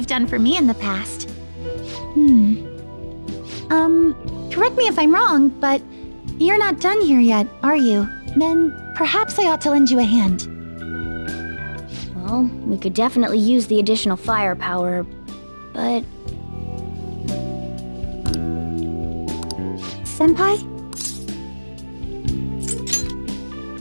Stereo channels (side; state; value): both; inverted; correlation -1.00